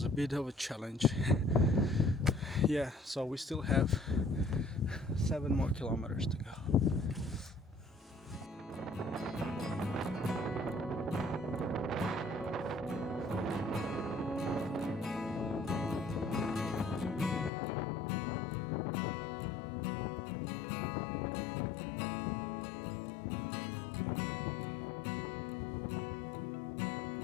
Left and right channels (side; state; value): right; drops out; at 17.5 s